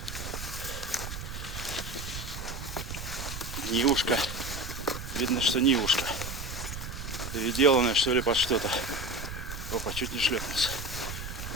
Нивушка. Видно, что Нивушка. Переделанная, что ли, под что-то. Опа, чуть не шлепнулся.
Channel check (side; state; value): right; noise; rumble, 8 dB below the sound